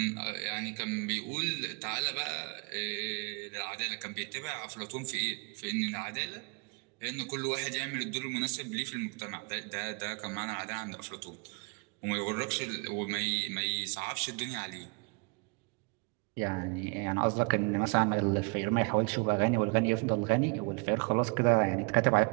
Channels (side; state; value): left; quieter; 33.2 dB